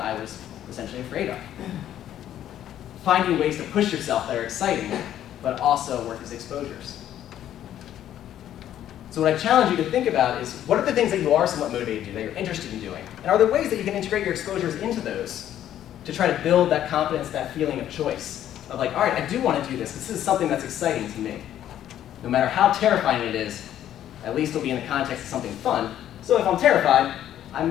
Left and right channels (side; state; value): right; quieter; 11.4 dB